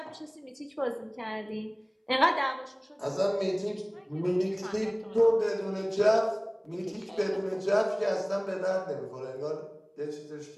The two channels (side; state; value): both; identical; correlation 1.00